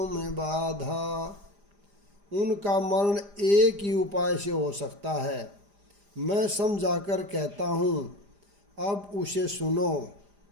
बाधा। उनका मरण एक ही उपाय से हो सकता है, मैं समझाकर कहता हूँ, अब उसे सुनो।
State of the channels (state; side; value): late; left; 4.9 ms